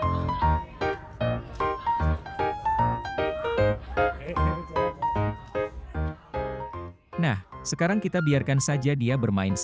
Nah, sekarang kita biarkan saja dia bermain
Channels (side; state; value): both; identical; correlation 1.00